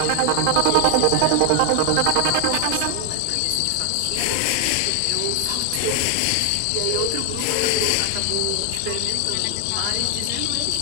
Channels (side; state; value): both; different; correlation 0.00